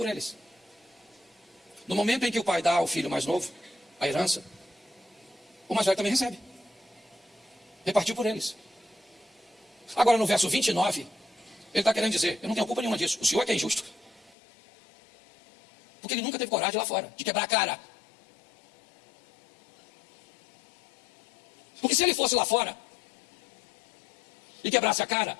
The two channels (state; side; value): drops out; right; at 14.4 s